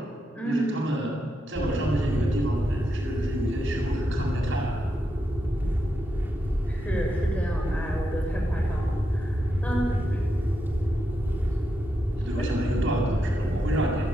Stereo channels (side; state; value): both; normal; correlation 0.85